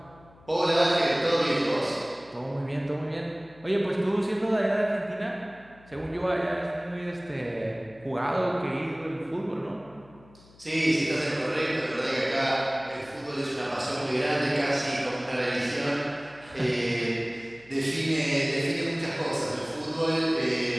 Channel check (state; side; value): noise; left; hum, 25 dB below the sound